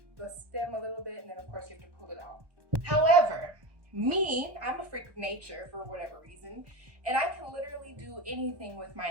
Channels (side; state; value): left; late; 1.2 ms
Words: the stem a little bit, and then of course you have to pull it out. However, I'm a freak of nature for whatever reason, and I can literally do anything with my